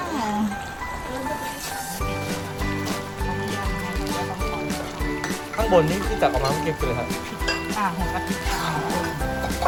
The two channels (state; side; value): identical; both; correlation 1.00